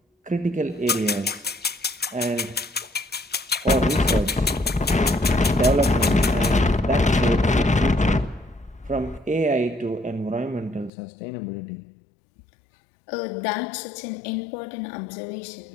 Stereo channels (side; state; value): right; drops out; at 10.9 s